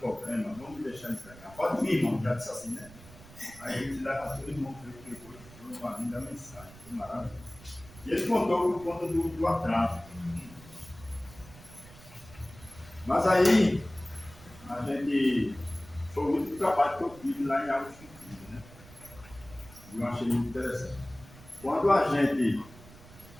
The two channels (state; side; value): noise; right; rumble, 20 dB below the sound